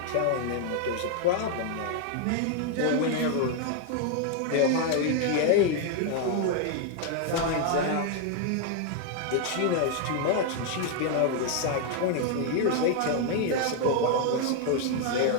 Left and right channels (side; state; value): both; different; correlation 0.00